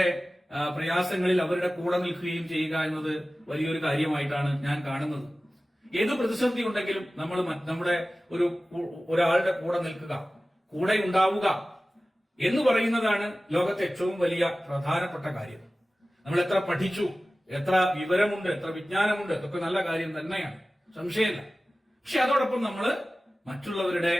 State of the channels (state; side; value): normal; both; correlation 0.96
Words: പ്രയാസങ്ങളിൽ അവരുടെ കൂടെ നിൽക്കുകയും ചെയ്യുക എന്നത് വലിയൊരു കാര്യമായിട്ടാണ് ഞാൻ കാണുന്നത്. ഏത് പ്രതിസന്ധി ഉണ്ടെങ്കിലും നമ്മൾ നമ്മുടെ ഒരാളുടെ കൂടെ നിൽക്കുക, കൂടെ ഉണ്ടാവുക എന്ന് പറയുന്നതാണ് ലോകത്തെ ഏറ്റവും വലിയ പ്രധാനപ്പെട്ട കാര്യം. നമ്മൾ എത്ര പഠിച്ചു, എത്ര വിവരമുണ്ട്, എത്ര വിജ്ഞാനമുണ്ട്, അതൊക്കെ നല്ല കാര്യം തന്നെയാണ്, സംശയമില്ല. പക്ഷെ അതോടൊപ്പം നമ്മൾ മറ്റുള്ളവരുടെ